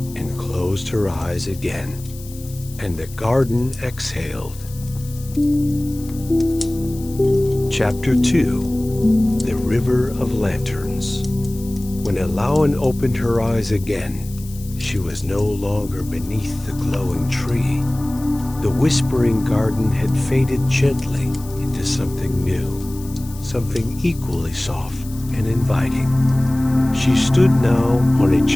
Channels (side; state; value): left; noise; hiss, 19 dB below the sound